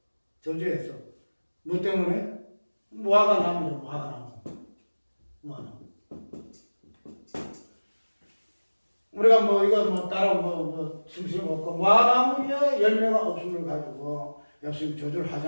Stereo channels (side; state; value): both; inverted; correlation -1.00